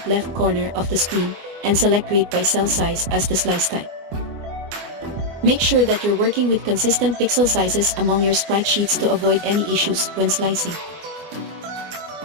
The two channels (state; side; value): late; left; 24 ms